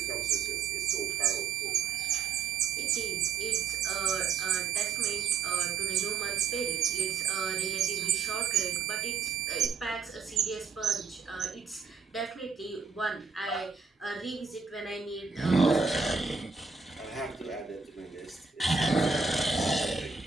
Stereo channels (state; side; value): quieter; left; 5.5 dB